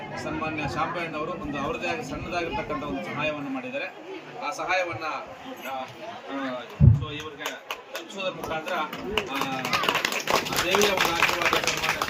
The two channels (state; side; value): identical; both; correlation 1.00